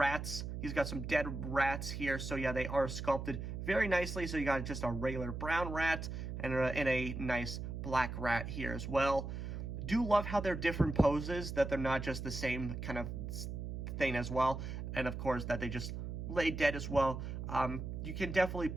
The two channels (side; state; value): right; noise; hum, 5 dB below the sound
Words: He's got some dead rats here. So yeah, they are sculpted very nicely. So you got just a regular brown rat and a nice black rat here as well. Do love how they're different poses, that they're not just the same kind of thing as well. And of course, that they just lay dead as well. You can definitely